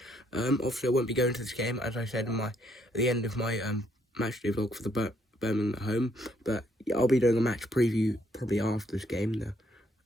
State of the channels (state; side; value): normal; both; correlation 0.70